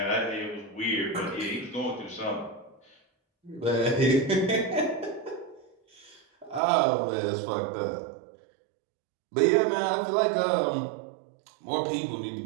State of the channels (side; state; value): left; drops out; at 6.6 s